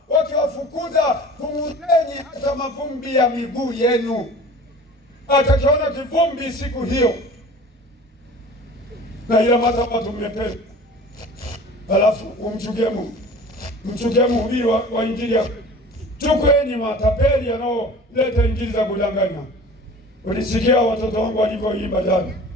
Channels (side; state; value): both; normal; correlation 0.42